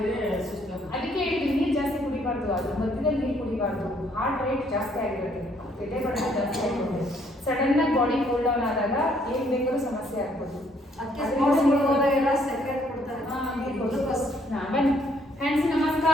ಸುಸ್ತಾಗುತ್ತೆ. ಅದಕ್ಕೆ ಹೇಳಿದ್ವಿ ನೀರು ಜಾಸ್ತಿ ಕುಡಿಬಾರ್ದು, ಅದು ಮಧ್ಯದಲ್ಲಿ ನೀರು ಕುಡಿಬಾರ್ದು. ಹಾರ್ಟ್ ರೇಟ್ ಜಾಸ್ತಿ ಆಗಿರುತ್ತೆ, ಎದೆ ಬಡಿತ ಜಾಸ್ತಿ ಆಗಿರುತ್ತೆ. ಸಡನ್ ಆಗಿ ಬಾಡಿ ಕೂಲ್ ಡೌನ್ ಆದಾಗ ಏನ್ ಬೇಕಾದ್ರೂ ಸಮಸ್ಯೆ ಆಗ್ಬೋದು. ಅದಕ್ಕೆ ಸ್ಪೋರ್ಟ್ಸ್ಗಳು ಹೋದಾಗೆಲ್ಲ ಸೆಕ್ರೆಟ್ ಕೊಡ್ತಾರೆ. ಬನ್ನಿ ಹ್ಯಾಂಡ್ಸ್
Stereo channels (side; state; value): both; normal; correlation 0.67